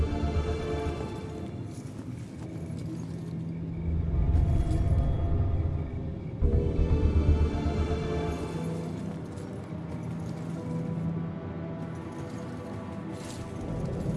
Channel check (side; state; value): both; identical; correlation 1.00